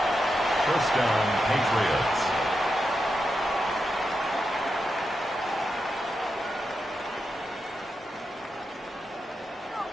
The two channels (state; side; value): normal; both; correlation 0.87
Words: First down, Patriots.